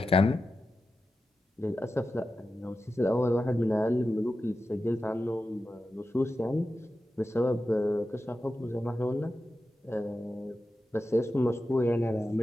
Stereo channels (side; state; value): both; normal; correlation 0.92